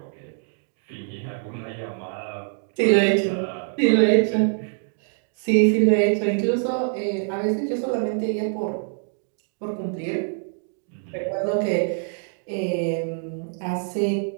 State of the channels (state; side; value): silent; left; 62 dB below the other